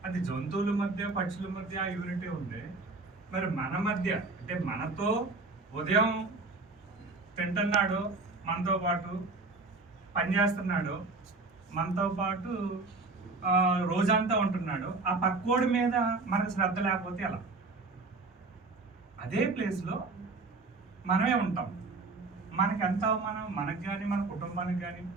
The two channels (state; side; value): quieter; left; 3.7 dB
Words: అది జంతువుల మధ్య పక్షుల మధ్య ఆ యూనిటీ ఉంది. మరి మన మధ్య అంటే మనతో ఉదయం తింటున్నాడు, మనతో పాటు పనిచేస్తున్నాడు, మనతో పాటు రోజంతా ఉంటున్నాడు, ఆ పక్కోడి మీద మనకు శ్రద్ధ లేకపోతే ఎలా? అదే ప్లేస్లో మనమే ఉంటాం. మనకి ఎంత అవమానం మనకు కానీ మన కుటుంబానికి కానీ.